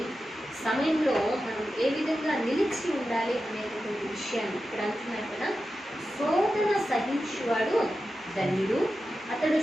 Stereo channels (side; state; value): both; normal; correlation 0.91